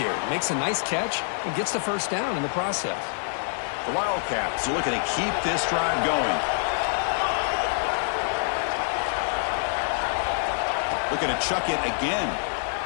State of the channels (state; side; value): silent; right; digital silence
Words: Makes a nice catch and gets the 1st down in the process. The Wildcats are looking to keep this drive going. Looking to chuck it again.